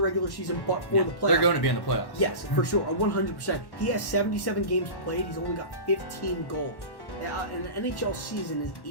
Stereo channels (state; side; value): late; right; 1.1 ms